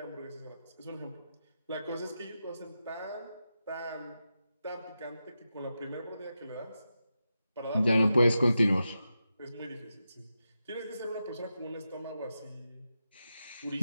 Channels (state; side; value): inverted; both; correlation -0.90